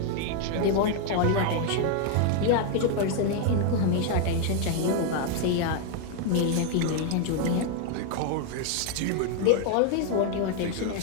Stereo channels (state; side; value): different; both; correlation 0.00